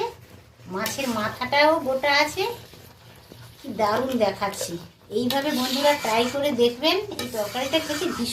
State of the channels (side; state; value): both; identical; correlation 1.00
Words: মাছের মাথাটাও গোটা আছে, কি দারুণ দেখাচ্ছি। এইভাবে বন্ধুরা ট্রাই করে দেখবেন, এই তরকারিটা খেতে